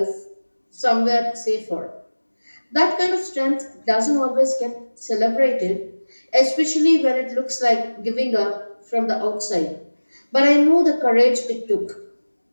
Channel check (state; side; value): inverted; both; correlation -1.00